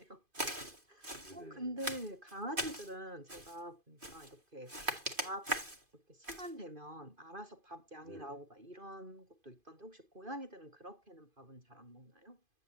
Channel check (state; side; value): late; left; 2.5 ms